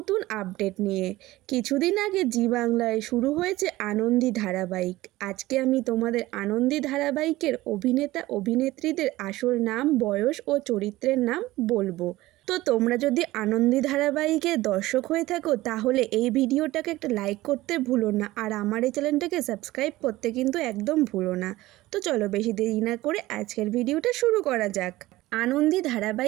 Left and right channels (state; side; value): quieter; left; 17.7 dB